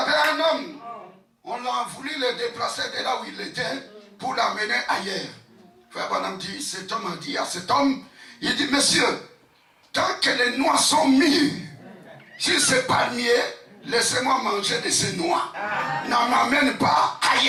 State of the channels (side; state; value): both; identical; correlation 1.00